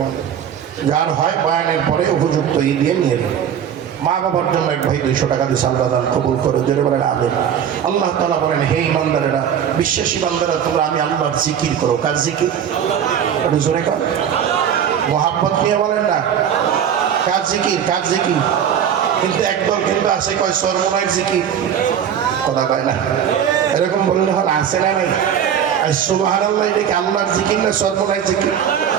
দেয়। যার হয় বয়ানের পরে উপযুক্ত দিয়ে নিয়ে নেবে। মা বাবার জন্য এক ভাই 200 টাকা দিয়ে আল্লাহ দান কবুল করে যেটা বলেন আবেন। আল্লাহ তাআলা বলেন, হে ঈমানদারেরা, বিশ্বাসী বান্দারা, তোমরা আমি আল্লাহর জিকির করো। কার জিকির? একটু জোরে কর, মোহাব্বত নিয়ে বলেন না। কার জিকির? কার জিকির? কিন্তু একদল কিন্তু আছে কয় সর্বনায়ের জিকির, কথা কয় না। এরকম বললে হল আছে না নাই? সুবহানাল্লাহ, এটা কি আল্লাহর জিকির না সর্বনায়ের জিকির?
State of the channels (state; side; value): quieter; left; 8.8 dB